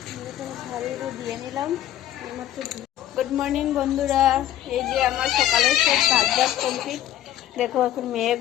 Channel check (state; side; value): quieter; right; 12.4 dB